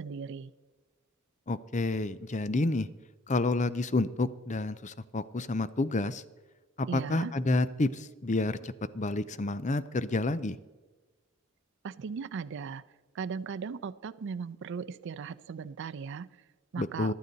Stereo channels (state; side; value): normal; both; correlation 0.62